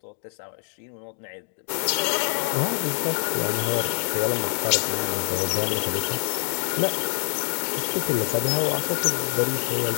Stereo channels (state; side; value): silent; right; 62 dB below the other